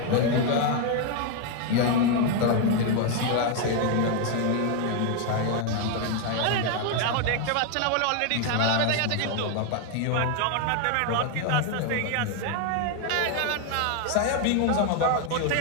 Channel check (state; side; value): different; both; correlation 0.01